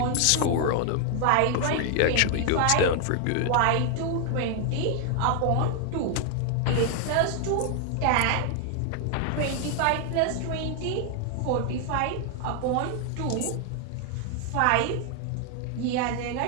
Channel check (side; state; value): both; different; correlation 0.00